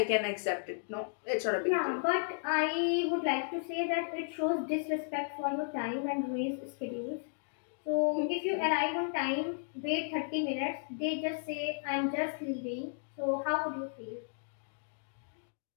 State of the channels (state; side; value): silent; right; digital silence